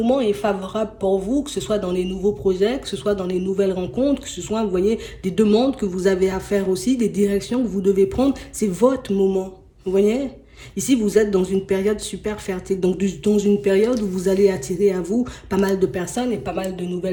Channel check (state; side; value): identical; both; correlation 1.00